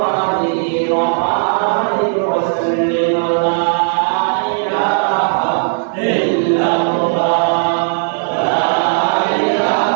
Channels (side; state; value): left; silent; digital silence